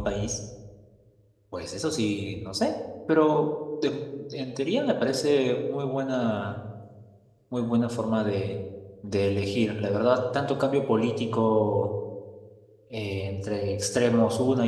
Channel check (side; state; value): both; identical; correlation 1.00